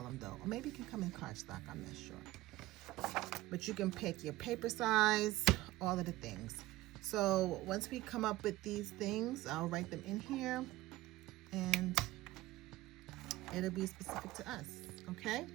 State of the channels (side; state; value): left; quieter; 17.6 dB